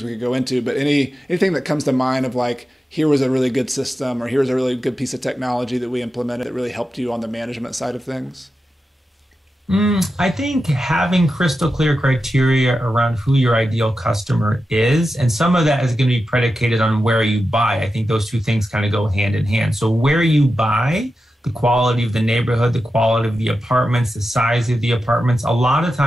we could go into, but anything that comes to mind of like, here was a really good system or here's a really good piece of technology that we implemented that really helped you on the management side of things? I think having crystal clear criteria around who your ideal customer is, and some of that is going to be predicated on where you buy. I think those two things kind of go hand in hand. So where you buy, the quality of the neighborhood, the quality of the apartments, the size of the apartments, a lot of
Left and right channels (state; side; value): normal; both; correlation 0.91